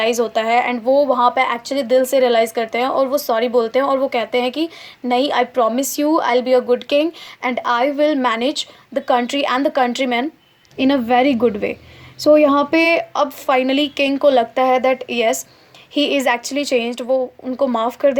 होता है एंड वो वहाँ पे एक्चुअली दिल से रियलाइज़ करते हैं और वो सॉरी बोलते हैं और वो कहते हैं कि नहीं, I promise you I will be a good king and I will manage the country and the country man in a very good way. So यहाँ पे अब फाइनली किंग को लगता है that yes he is actually changed, वो उनको माफ़ कर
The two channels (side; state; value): both; identical; correlation 1.00